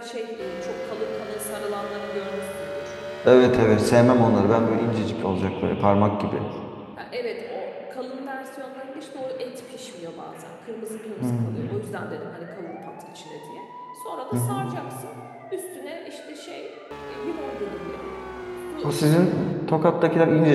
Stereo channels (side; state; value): both; identical; correlation 1.00